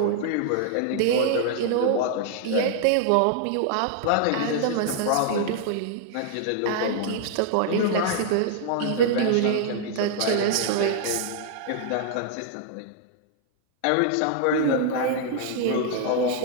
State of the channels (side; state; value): both; different; correlation -0.01